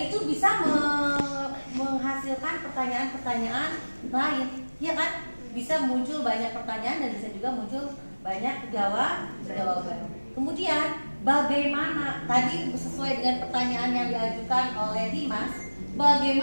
itu bisa menghasilkan pertanyaan-pertanyaan lain, ya kan? Bisa muncul banyak pertanyaan dan bisa juga muncul banyak jawaban. Kemudian bagaimana, tadi sesuai dengan pertanyaan yang diajukan oleh Dimas,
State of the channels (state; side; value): inverted; both; correlation -1.00